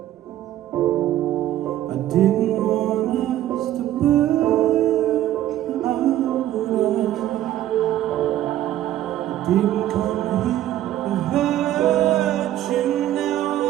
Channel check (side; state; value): left; quieter; 13.1 dB